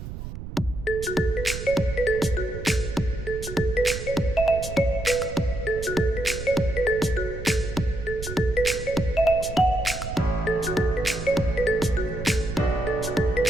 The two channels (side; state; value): right; noise; rumble, 9 dB below the sound